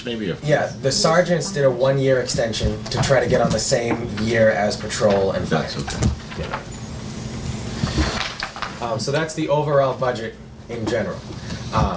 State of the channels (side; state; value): both; identical; correlation 1.00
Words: maybe? Or? Yeah, the sergeants did a 1-year extension to try to get on the same year as patrol and fire. That's okay. So that's the overall budget in general.